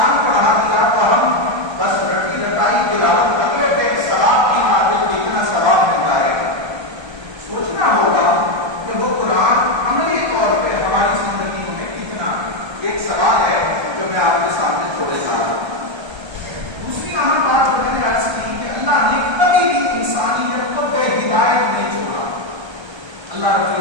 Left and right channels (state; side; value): late; left; 1.3 ms